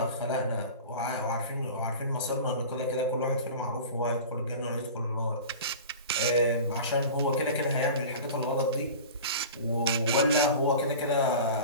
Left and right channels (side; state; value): both; inverted; correlation -0.35